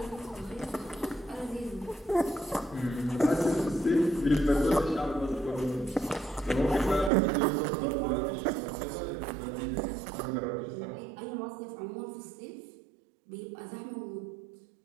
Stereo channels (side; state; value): left; drops out; at 7.1 s